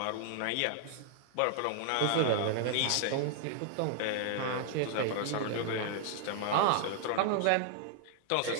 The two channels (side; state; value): both; different; correlation 0.00